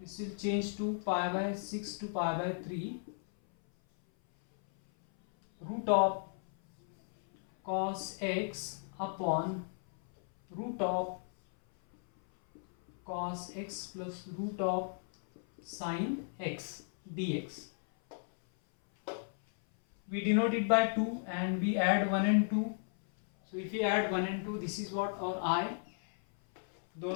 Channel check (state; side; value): silent; right; 55 dB below the other